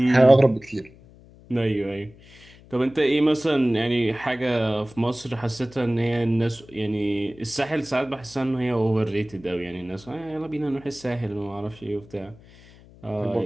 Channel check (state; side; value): noise; left; hum, 23 dB below the sound